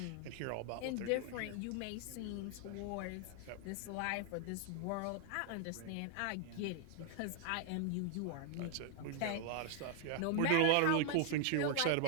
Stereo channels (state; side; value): different; both; correlation 0.00